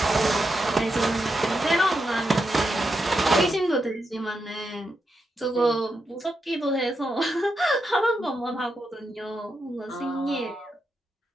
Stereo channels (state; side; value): normal; both; correlation 0.85